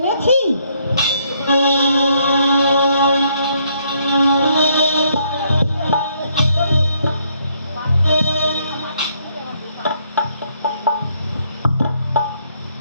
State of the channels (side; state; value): both; inverted; correlation -0.70